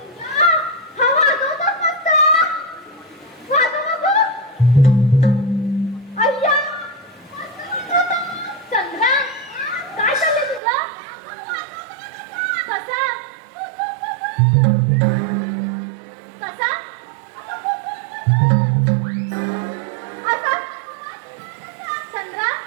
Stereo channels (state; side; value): drops out; left; at 10.6 s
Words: हा वाजवतोस मस्त वाजव बघू अय्या चंद्रा काय चाललंय तुझं कसा कसा असा चंद्रा